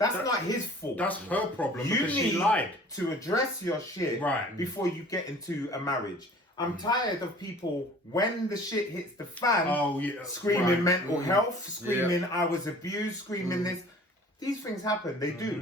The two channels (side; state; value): both; normal; correlation 0.48